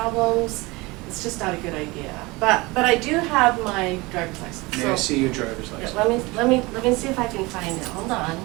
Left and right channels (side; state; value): left; quieter; 23.4 dB